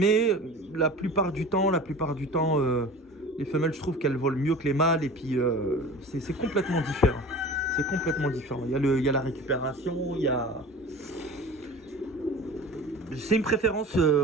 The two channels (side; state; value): both; normal; correlation 0.38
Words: la plupart du temps, les femelles, je trouve qu'elles volent mieux que les mâles. Et puis, c'est complètement différent. C'est complètement différent. Il y a la récupération, il y a... C'est une préférence,